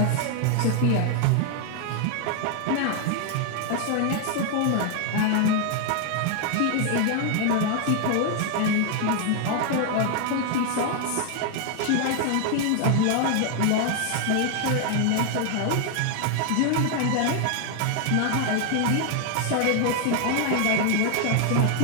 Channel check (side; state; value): both; different; correlation 0.00